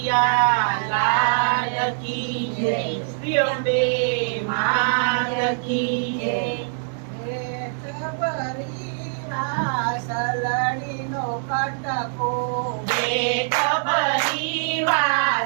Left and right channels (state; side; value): silent; left; digital silence